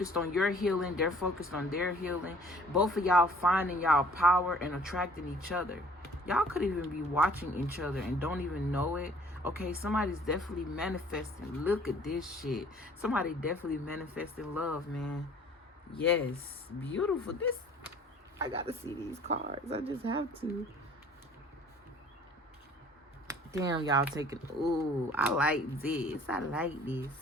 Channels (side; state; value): both; normal; correlation 0.54